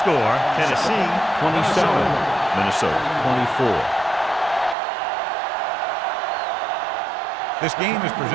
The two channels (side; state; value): left; drops out; at 4.8 s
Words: Tennessee 27, Minnesota 24. This game is